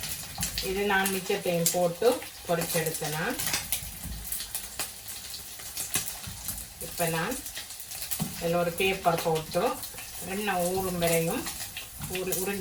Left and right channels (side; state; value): both; identical; correlation 1.00